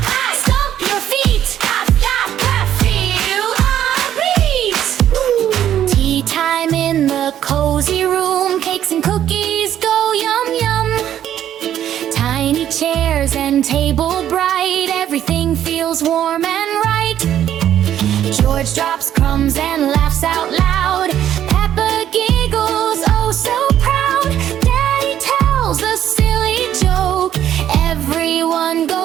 clap, stomp your feet, clap, clap, clap, feel our beat. Tea time in the cozy room, cakes and cookies go yum yum. Tiny chairs and table bright, everything feels warm and right. George drops crumbs and laughs out loud, Peppa giggles oh so proud. Daddy tells a silly joke, everyone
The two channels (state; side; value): quieter; left; 10.9 dB